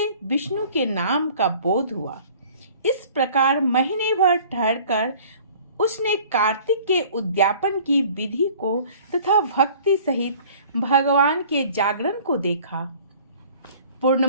विष्णु के नाम का बोध हुआ। इस प्रकार महीने भर ठहरकर उसने कार्तिक के उद्यापन की विधि को तथा भक्ति सहित भगवान के जागरण को देखा।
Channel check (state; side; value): inverted; both; correlation -0.50